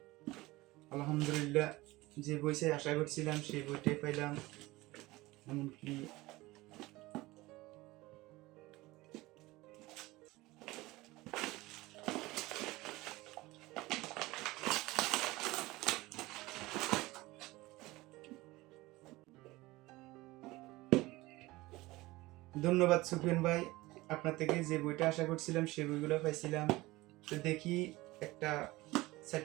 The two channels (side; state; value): left; quieter; 19.9 dB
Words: আলহামদুলিল্লাহ, যে বইটা আশা করছিলাম সেই বইটাই পাইলাম। এমনকি ধন্যবাদ সুফিয়ান ভাই, আপনার থেকে যে বইটা আশা করছিলাম সেই বইগুলো পাইছিলাম। তো দেখি একটা